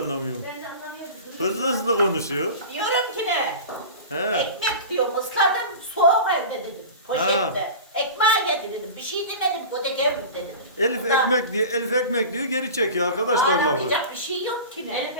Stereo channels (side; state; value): both; inverted; correlation -0.33